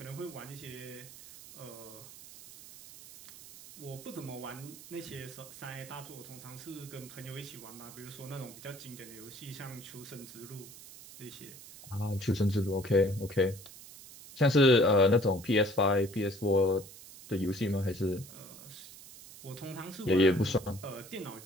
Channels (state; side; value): noise; right; hiss, 17 dB below the sound